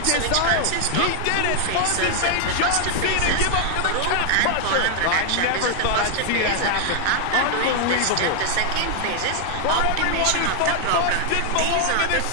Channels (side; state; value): both; different; correlation 0.00